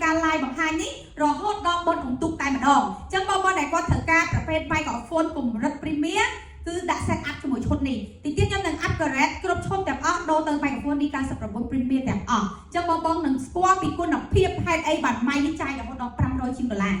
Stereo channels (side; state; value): both; identical; correlation 1.00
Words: ការ live បង្ហាញនេះរហូតដល់បុណ្យអុំទូកតែម្ដងអញ្ចឹងបងដែលគាត់ត្រូវការប្រភេទ microphone កម្រិត premium គឺដាក់ set up ជាមួយឈុតនេះទីទៀតខ្ញុំនឹង upgrade គ្រប់ឈុតទាំងអស់ដូរទៅ microphone D99 Premium ទាំងអស់អញ្ចឹងបងនឹងស្គាល់ពីគុណភាពហេតុអីបានម៉ៃនេះចាយរហូតដល់$500